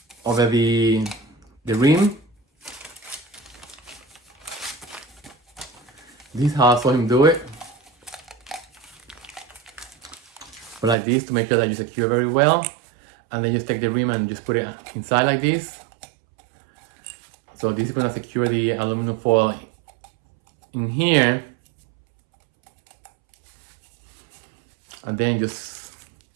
rim. This is how I saw him do it. But like this to make sure that you secure very well, and then just take the rim and just put it inside like this. So this is gonna secure the aluminum foil in here. And then just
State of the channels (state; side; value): drops out; left; at 11.0 s